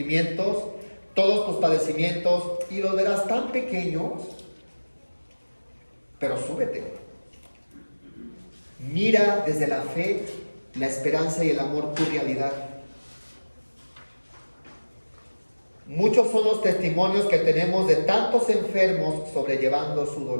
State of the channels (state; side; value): inverted; both; correlation -1.00